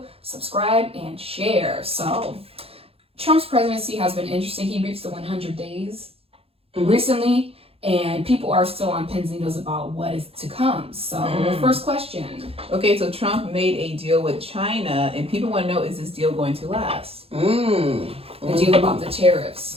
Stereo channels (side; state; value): left; late; 0.28 ms